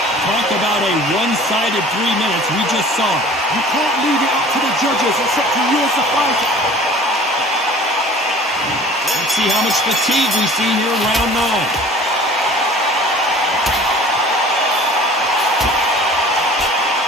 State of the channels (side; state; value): both; normal; correlation 0.46